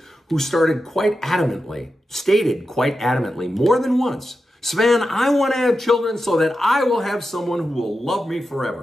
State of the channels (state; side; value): normal; both; correlation 0.90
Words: who stated quite adamantly, more than once, Sven, I want to have children so that I will have someone who will love me